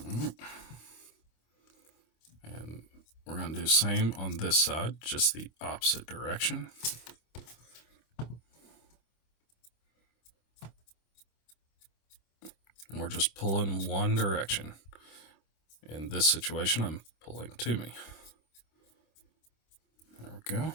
And we're going to do the same on this side, just the opposite direction. And we're just pulling one direction. In this situation, I'm pulling to me. There we go.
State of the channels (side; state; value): right; late; 26 ms